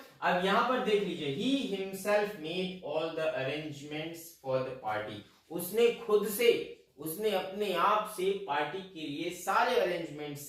अब यहां पर देख लीजिए, he himself made all the arrangements for the party. उसने खुद से, उसने अपने आप से पार्टी के लिए सारे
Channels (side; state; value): both; identical; correlation 1.00